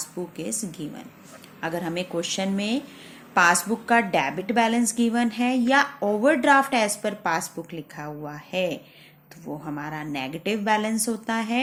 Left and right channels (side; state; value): both; identical; correlation 1.00